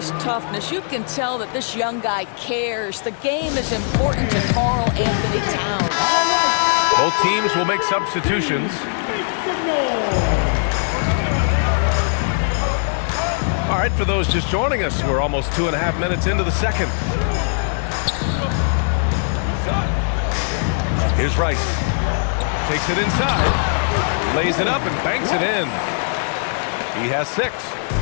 toughness. You can tell that this young guy cares. The game is important to Karl Anthony Towns. Both teams will make substitutions. All right, for those just joining us, we're almost 2.5 minutes into the second. Here's Rice. Takes it inside, lays it up and banks it in. He has 6.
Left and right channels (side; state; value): right; silent; digital silence